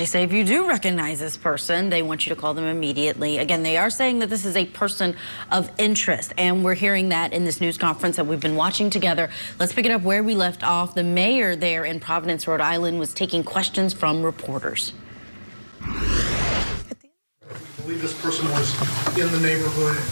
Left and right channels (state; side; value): inverted; both; correlation -1.00